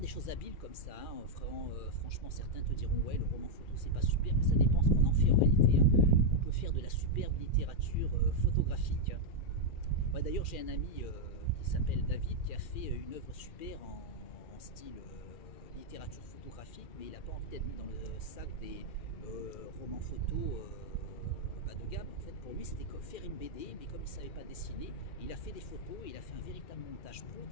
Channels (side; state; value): right; late; 2.4 ms